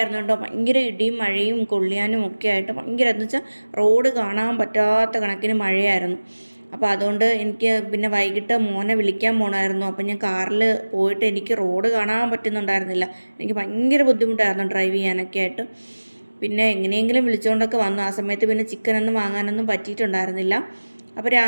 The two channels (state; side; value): inverted; both; correlation -1.00